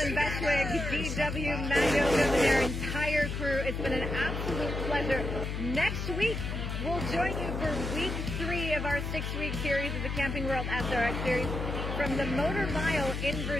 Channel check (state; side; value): noise; left; hum, 3 dB below the sound